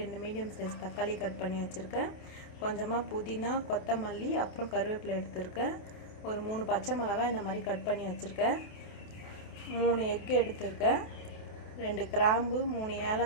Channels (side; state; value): right; late; 28 ms